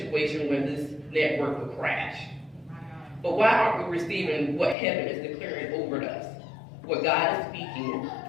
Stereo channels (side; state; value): right; drops out; at 4.8 s